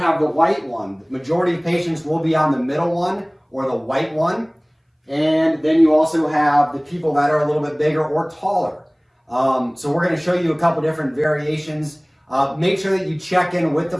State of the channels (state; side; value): identical; both; correlation 1.00